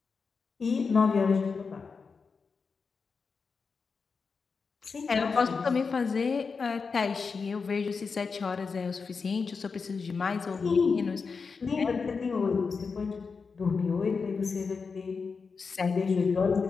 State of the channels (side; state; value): right; quieter; 5.0 dB